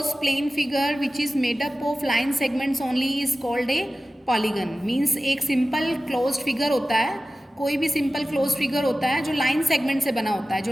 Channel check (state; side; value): normal; both; correlation 0.95